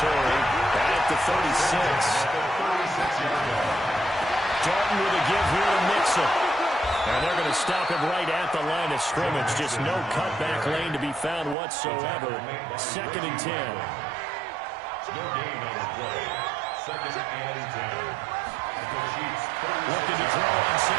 at the 36. Dalton with a give here to Mixon. And they're going to stop him right at the line of scrimmage. Just no cutback lane to be found whatsoever. Second and 10. No gain on the play. Second and 10. Looking to throw on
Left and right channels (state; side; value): drops out; left; at 11.6 s